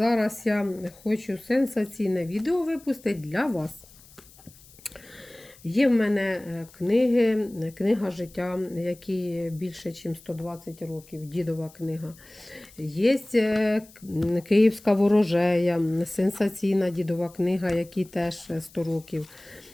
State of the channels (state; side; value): noise; left; hiss, 24 dB below the sound